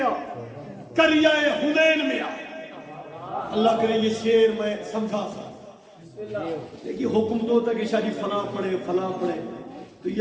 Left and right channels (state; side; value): identical; both; correlation 1.00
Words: کریائے حنین میں آ. اللہ کرے یہ شعر میں سمجھا سا. دیکھیے حکم تو ہوتا ہے کہ شاہ جی فلاں پڑھے فلاں پڑھے، تو